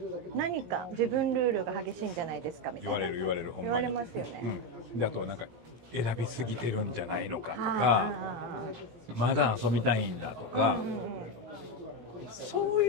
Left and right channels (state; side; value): late; left; 17 ms